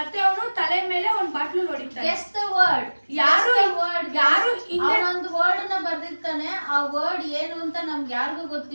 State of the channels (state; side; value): inverted; both; correlation -1.00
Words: ಅವನು ತಲೆ ಮೇಲೆ ಒಂದ್ ಬಾಟ್ಲು ಹೊಡಿತಾನೆ. ಯಾರು ಒಂದು ವರ್ಡ್ ನ ಬರ್ದಿರ್ತಾನೆ. ಆ ವರ್ಡ್ ಏನು ಅಂತ ನಮ್ಗೆ ಯಾರಿಗೂ